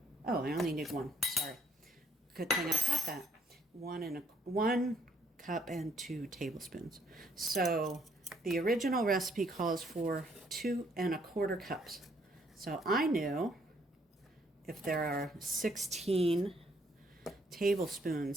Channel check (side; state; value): both; normal; correlation 0.67